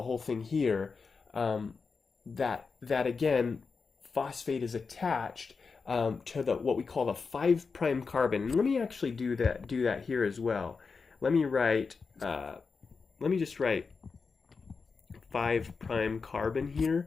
whole thing here. That again, phosphate is attached to what we call the 5' carbon. And let me actually do that here as well. Let me just write 5' carbon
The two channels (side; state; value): right; quieter; 4.9 dB